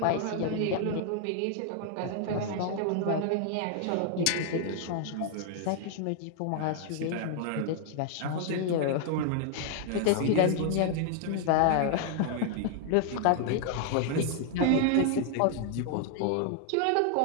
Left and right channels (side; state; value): both; different; correlation 0.00